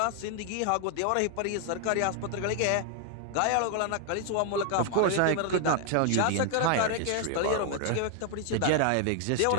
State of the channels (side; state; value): both; different; correlation 0.00